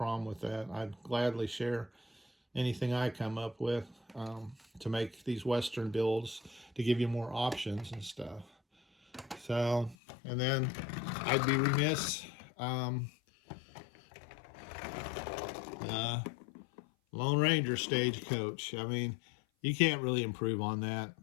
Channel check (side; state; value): right; drops out; at 10.0 s